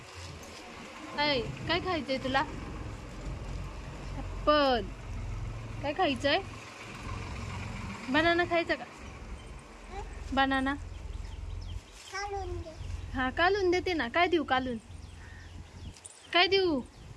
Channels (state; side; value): identical; both; correlation 1.00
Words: काय खायचंय तुला? ऍपल. काय खायचंय? बनाना खायचा का? बनाना हा, कालून देते ना. काय देऊ कालून? काय देऊ?